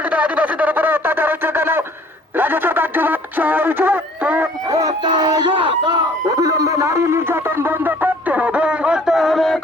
আদিবাসীদের উপরে অত্যাচার হচ্ছে কেন রাজ্য সরকার জবাব চাইছে অবিলম্বে নারী নির্যাতন বন্ধ করতে হবে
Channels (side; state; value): both; normal; correlation 0.55